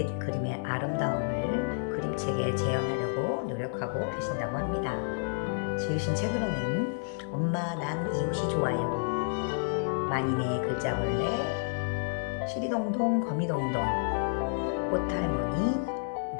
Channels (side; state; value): right; silent; 58 dB below the other